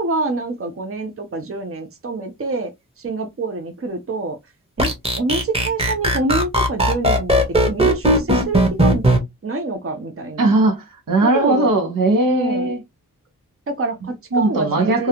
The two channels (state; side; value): normal; both; correlation 0.27